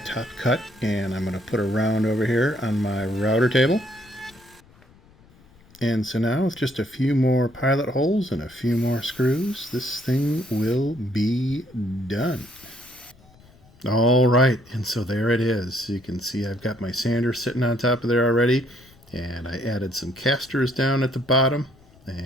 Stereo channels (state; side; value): noise; left; rumble, 27 dB below the sound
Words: cut, and I'm going to put a round over here on my router table. And so now with just a few more pilot holes and a few more screws, this thing will be done. All right, and so there it is. You can see I've got my sander sitting on top of there already. And I added some casters down at the bottom,